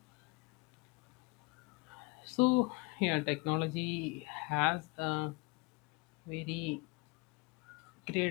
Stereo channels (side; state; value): right; quieter; 26.5 dB